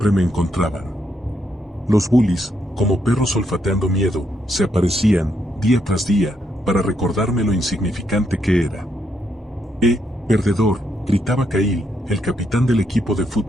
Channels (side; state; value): both; normal; correlation 0.77